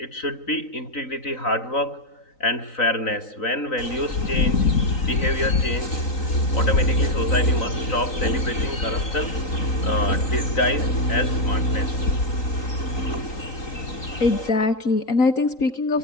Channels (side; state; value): right; late; 3.9 ms